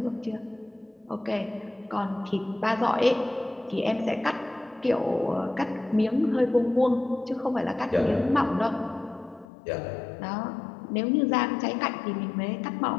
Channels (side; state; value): right; drops out; at 9.5 s